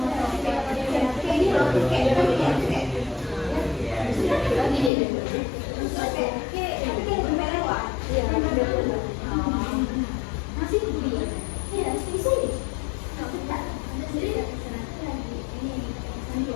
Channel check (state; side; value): drops out; right; at 4.9 s